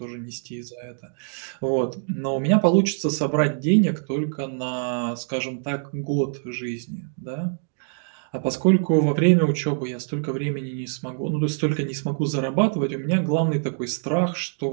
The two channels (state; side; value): silent; left; digital silence